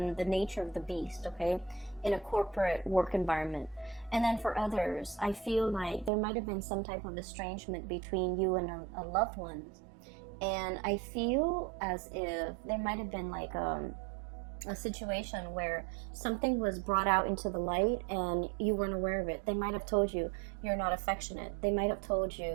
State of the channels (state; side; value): drops out; left; at 6.1 s